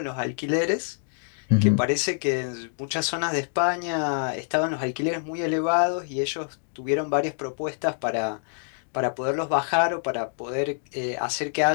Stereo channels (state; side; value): silent; right; digital silence